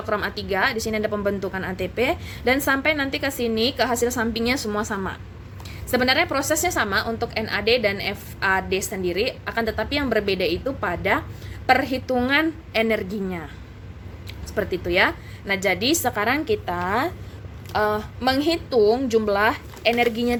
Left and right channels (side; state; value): both; identical; correlation 1.00